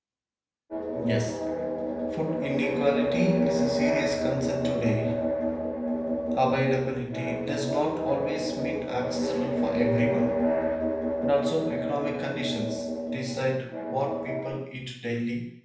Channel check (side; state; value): both; identical; correlation 1.00